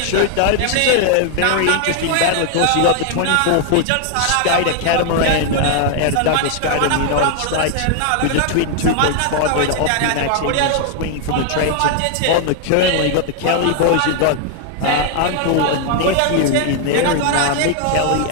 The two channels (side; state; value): both; different; correlation 0.00